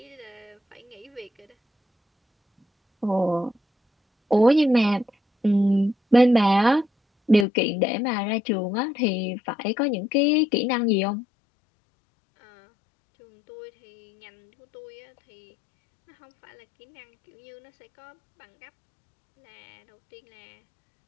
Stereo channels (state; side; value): drops out; right; at 7.5 s